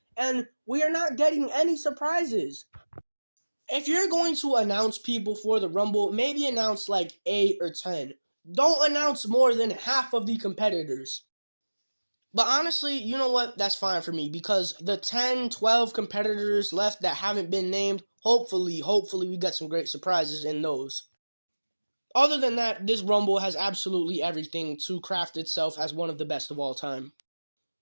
and we are not getting any surprises. If you're going to announce people for the Rumble, maybe announce like 8 or 10. Don't announce more than half of the competitors. But honestly, you know what? That's fine for me because the 10, 12 competitors left that haven't been named, hopefully we get some great surprises in those. Other than that, this Rumble has absolutely everything to craft itself as one of the best of all time.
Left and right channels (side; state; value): both; inverted; correlation -1.00